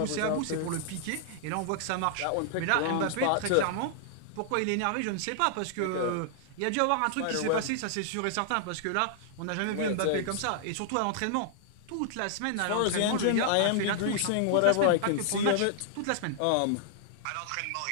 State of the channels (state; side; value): different; both; correlation -0.01